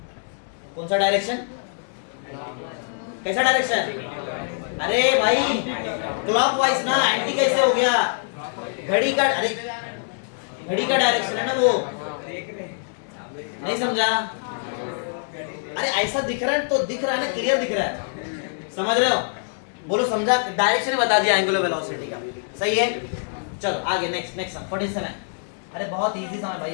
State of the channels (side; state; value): right; silent; digital silence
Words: कौन सा डायरेक्शन? कैसा डायरेक्शन? अरे भाई क्लॉकवाइज ना, एंटी कैसे हो गया? घड़ी का, अरे घड़ी का डायरेक्शन है ना वो, नहीं समझा? अरे ऐसा दिख रहा है तो दिख रहा है ना, क्लियर दिख रहा है, समझ रहे हो? बोलो समझा? डायरेक्शन बता दिया एंगुलर वेलोसिटी का, सही है। चलो आगे, नेक्स्ट 47। अरे बहुत इजी समय